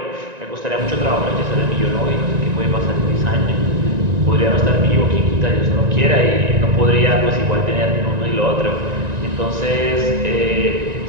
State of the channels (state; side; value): late; left; 1.9 ms